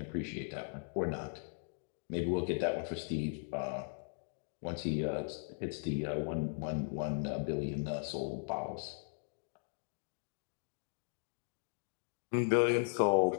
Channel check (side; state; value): right; silent; digital silence